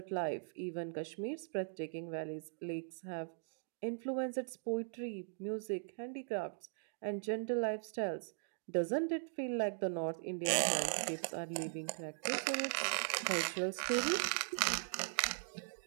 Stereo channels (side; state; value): left; silent; digital silence